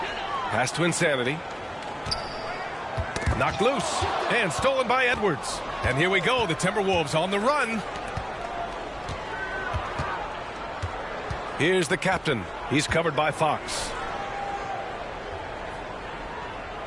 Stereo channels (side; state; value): both; identical; correlation 1.00